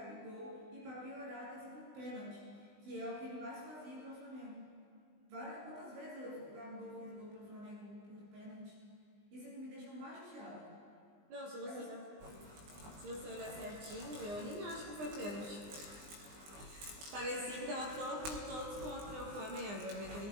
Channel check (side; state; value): left; late; 20 ms